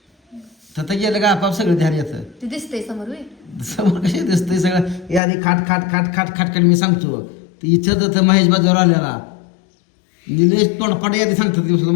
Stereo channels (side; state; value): right; drops out; at 5.2 s